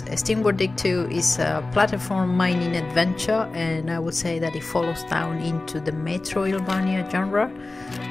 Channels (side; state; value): right; quieter; 3.2 dB